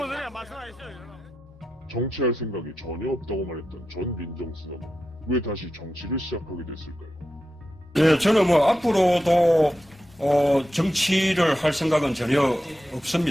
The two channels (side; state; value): both; normal; correlation 0.89